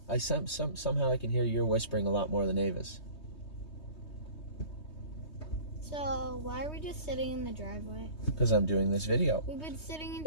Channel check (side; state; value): right; late; 3.2 ms